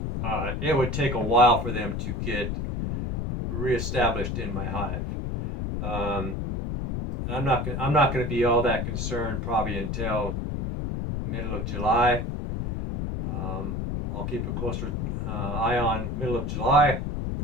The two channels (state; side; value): noise; left; rumble, 2 dB below the sound